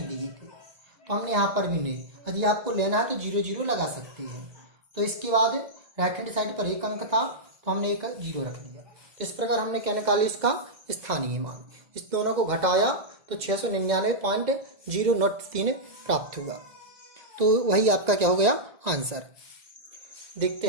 लिए थे, तो हमने यहाँ पर भी नहीं। यदि आपको लेना है तो 0 0 लगा सकते हैं। तो इसके बाद राइट हैंड साइड पर 1 अंक था, तो हमने एक 0 रख दिया। इस प्रकार हमने क्या निकाली? इसका स्थानीय मान। इस दोनों को घटाया तो 699.003 प्राप्त हुआ। तो वही आपका क्या हो गया? आंसर। देखते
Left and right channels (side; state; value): left; late; 2.0 ms